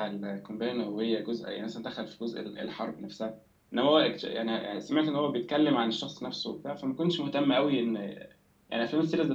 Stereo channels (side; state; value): both; identical; correlation 1.00